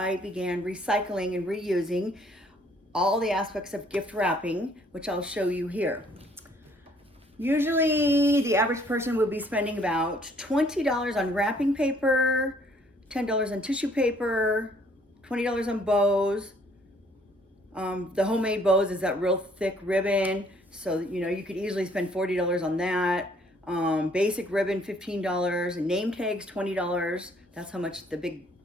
began recycling and reusing all the aspects of gift wrapping, which I'll show you here. Usually the average person would be spending about $20 on wrapping paper, $10 on tissue paper, $20 on bows. The homemade bows is that real thick ribbon, so you could easily spend $40 on that. Basic ribbon, $15, and name tags, $20. That's how much the big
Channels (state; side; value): normal; both; correlation 0.63